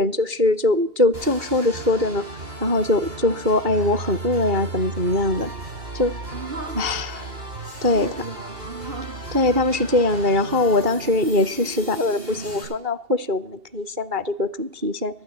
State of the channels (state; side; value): late; left; 2.8 ms